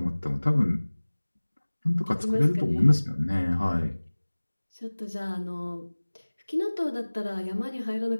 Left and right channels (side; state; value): both; inverted; correlation -1.00